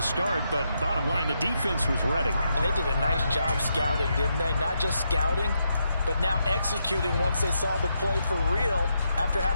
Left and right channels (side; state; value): both; inverted; correlation -0.81